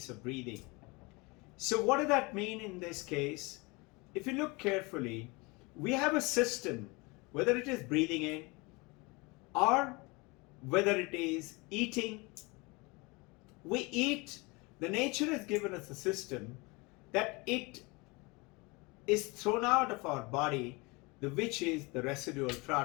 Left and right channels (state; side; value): quieter; right; 26.4 dB